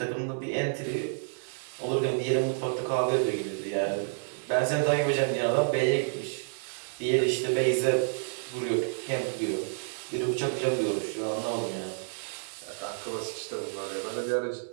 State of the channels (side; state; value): left; silent; 58 dB below the other